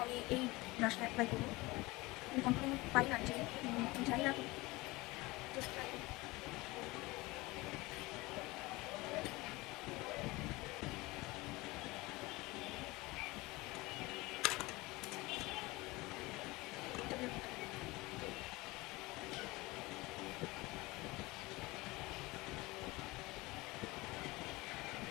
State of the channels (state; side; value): quieter; right; 21.9 dB